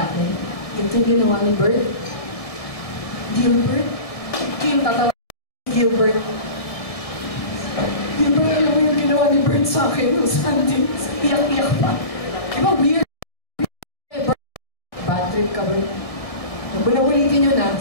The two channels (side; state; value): right; late; 1.7 ms